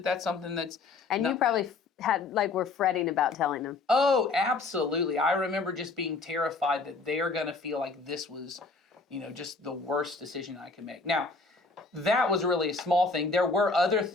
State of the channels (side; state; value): right; quieter; 3.8 dB